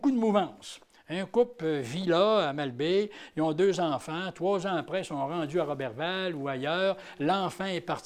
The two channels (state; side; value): identical; both; correlation 1.00